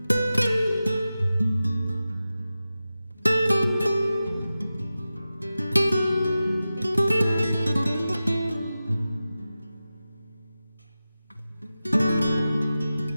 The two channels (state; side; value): inverted; both; correlation -0.94